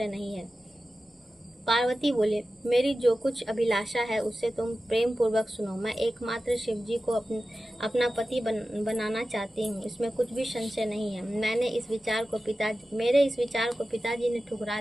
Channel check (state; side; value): normal; both; correlation 0.94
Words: नहीं है। पार्वती बोले, मेरी जो कुछ अभिलाषा है उससे तुम प्रेम पूर्वक सुनो। मैं एकमात्र शिव जी को अपना पति बनाना चाहती हूँ, इसमें कुछ भी संशय नहीं है। मेरे इस विचार को पिताजी ने ठुकरा